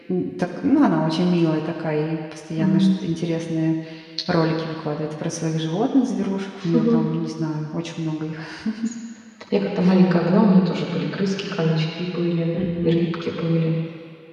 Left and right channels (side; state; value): both; identical; correlation 1.00